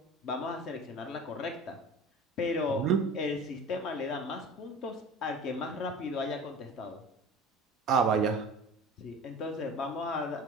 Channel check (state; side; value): normal; both; correlation 0.38